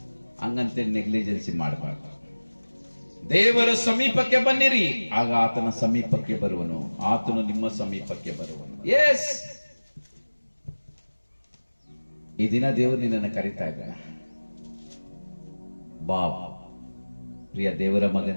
ಹಂಗಂತೆ ನೆಗ್ಲಿಜೆನ್ಸಿ ಮಾಡಬಾರ್ದು. ದೇವರ ಸಮೀಪಕ್ಕೆ ಬನ್ನಿರಿ, ಆಗ ಆತನ ಸಮೀಪಕ್ಕೆ ಬರುವನು, ಆತನು ನಿಮ್ಮ ಸಮೀಪಕ್ಕೆ ಬರುವನು. ಎಸ್, ಈ ದಿನ ದೇವರು ನಿನ್ನನ್ನು ಕರೀತಾ ಇದ್ದಾನೆ. ಬಾ ಪ್ರಿಯ ದೇವರ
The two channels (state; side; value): inverted; both; correlation -1.00